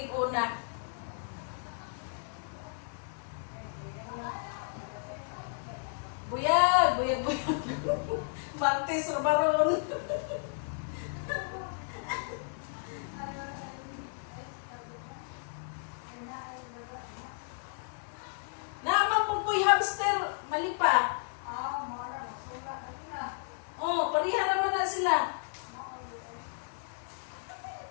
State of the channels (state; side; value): silent; right; digital silence